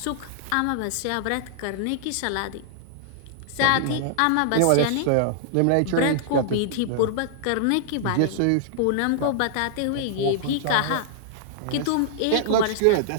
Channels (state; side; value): different; both; correlation -0.01